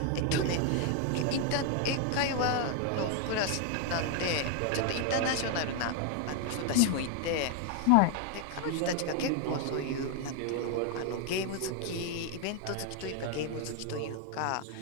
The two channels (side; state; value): both; different; correlation 0.01